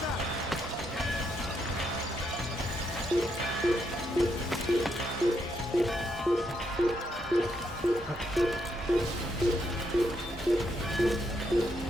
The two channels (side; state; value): both; normal; correlation 0.78